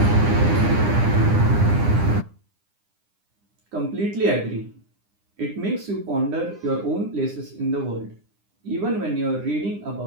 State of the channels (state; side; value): late; left; 9.9 ms